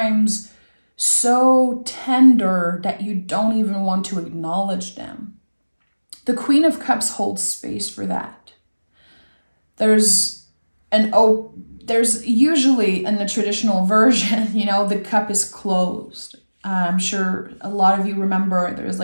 so tender that you don't even want to acknowledge them. The Queen of Cups holds space for that. There's usually in the traditional version, the cup is closed. I'm sure a lot of you remember there's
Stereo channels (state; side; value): inverted; both; correlation -1.00